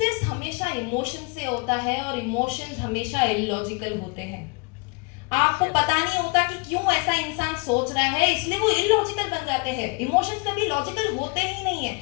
हमेशा इमोशन से होता है और इमोशंस हमेशा इलॉजिकल होते हैं। आपको पता नहीं होता कि क्यों ऐसा इंसान सोच रहा है, इसलिए वो इलॉजिकल बन जाते हैं। इमोशंस कभी लॉजिकल होते ही नहीं है।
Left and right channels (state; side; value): quieter; right; 30.5 dB